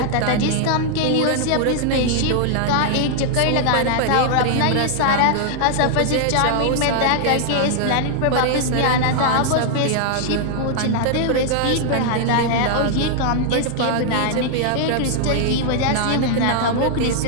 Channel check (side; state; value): both; different; correlation 0.00